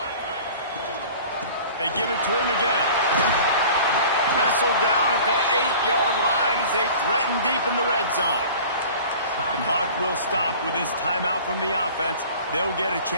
They give it to him again. Wrestled down at the 8-yard line as they threaten deep in the red zone. The clock will stop with this timeout from the offense. They'll get a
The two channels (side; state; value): both; inverted; correlation -0.43